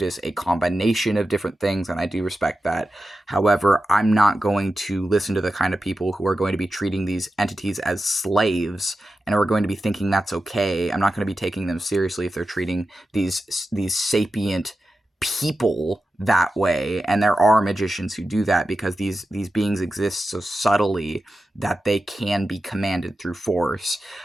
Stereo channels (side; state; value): both; normal; correlation 0.92